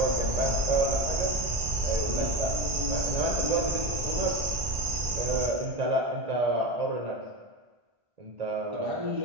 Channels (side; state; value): left; late; 1.5 ms